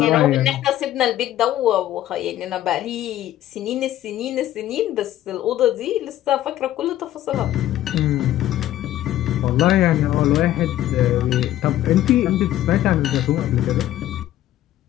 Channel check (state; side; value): quieter; right; 13.3 dB